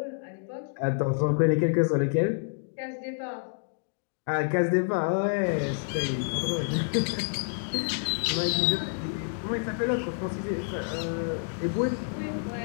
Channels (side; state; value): right; silent; digital silence